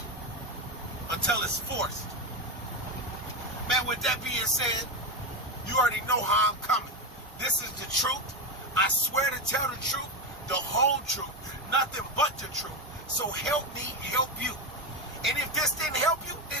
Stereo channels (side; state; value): both; normal; correlation 0.13